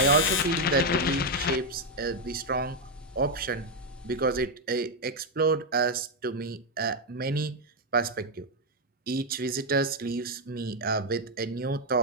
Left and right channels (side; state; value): both; normal; correlation 0.03